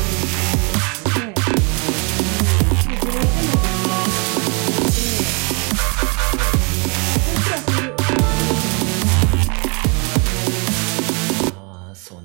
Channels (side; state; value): left; quieter; 33.8 dB